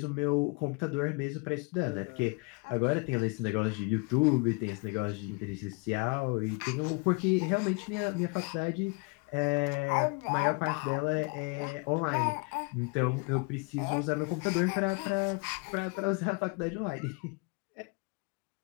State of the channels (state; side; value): quieter; right; 30.2 dB